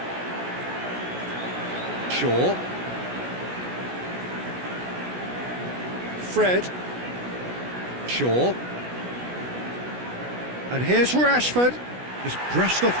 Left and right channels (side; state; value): left; late; 16 ms